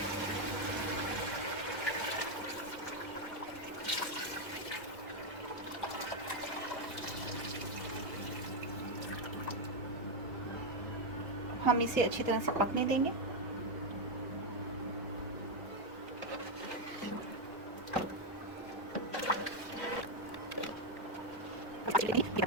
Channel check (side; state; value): both; normal; correlation 0.04